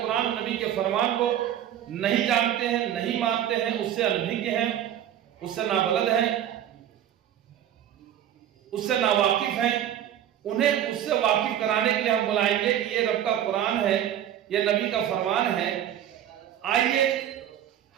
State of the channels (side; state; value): left; quieter; 10.8 dB